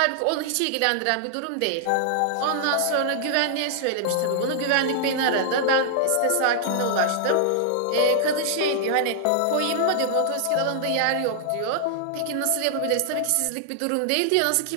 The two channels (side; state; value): both; different; correlation -0.01